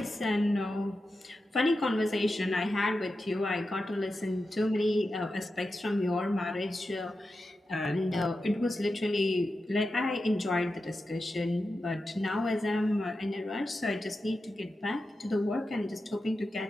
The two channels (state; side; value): normal; both; correlation 0.91